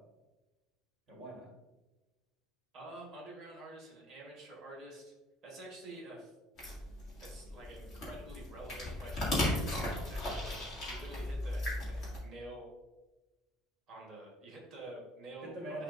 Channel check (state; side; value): normal; both; correlation 0.61